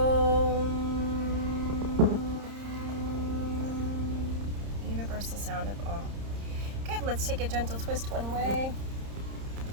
Universal sound of Om. Good, let's take a gentle twist one way.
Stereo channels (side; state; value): left; late; 30 ms